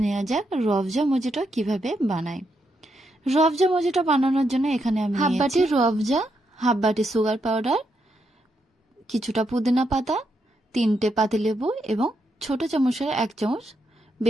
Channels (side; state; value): both; normal; correlation 0.81